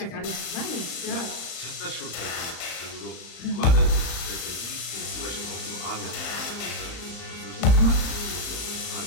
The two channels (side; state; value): right; late; 35 ms